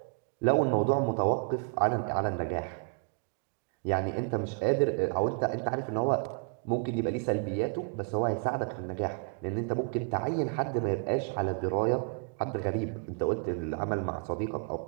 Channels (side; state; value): left; quieter; 35.5 dB